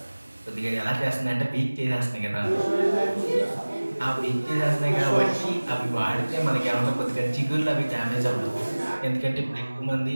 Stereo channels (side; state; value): both; inverted; correlation -1.00